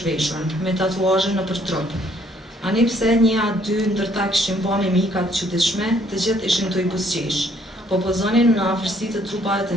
zhveshur, me tatuazhe në për trup. Ani pse një a dy ndërta kishin ba me mikat çuditshme, të gjithë ishin të i busqesh, po pozonin në afërsi të trupave të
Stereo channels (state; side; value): normal; both; correlation 0.65